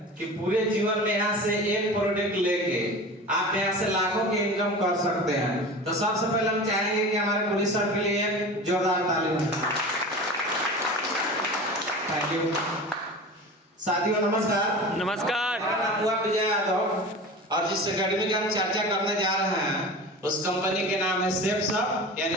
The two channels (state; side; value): normal; both; correlation 0.33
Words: कि पूरे जीवन में यहाँ से एक प्रोडक्ट लेके आप यहाँ से लाखों की इनकम कर सकते हैं। तो सबसे पहले हम चाहेंगे कि हमारे पुलिस सर के लिए एक जोरदार ताली हो। Thank you. साथियों नमस्कार। नमस्कार। मेरा नाम हुआ विजय यादव और जिस एकेडमी की हम चर्चा करने जा रहे हैं उस कंपनी के नाम है सेफ शॉप यानी